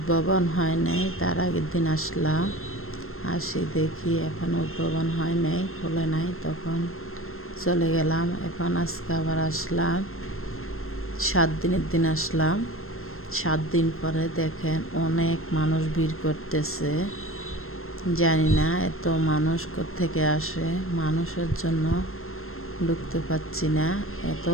হয় নাই তার আগের দিন আসলাম, আসি দেখি এখন উদ্ভাবন হয় নাই, খোলে নাই, তখন চলে গেলাম। এখন আজকে আবার আসলাম, 7 দিনের দিন আসলাম। 7 দিন পরে দেখেন অনেক মানুষ ভিড় করতেছে। জানি না এত মানুষ কোত্থেকে আসে, মানুষের জন্য ঢুকতে পারছি না, এত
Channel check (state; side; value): late; right; 0.62 ms